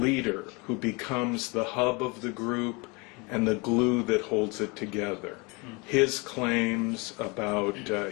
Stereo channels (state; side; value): quieter; right; 28.3 dB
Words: who becomes the hub of the group and the glue that holds it together. His claims about